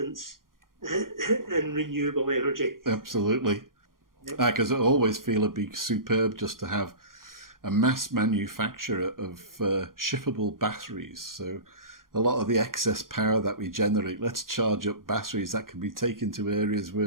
in renewable energy. Absolutely. Because I always feel it'd be superb just to have a mass manufacture of shippable batteries. So a lot of the excess power that we generate, let's charge up batteries that can be taken to areas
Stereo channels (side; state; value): left; late; 0.91 ms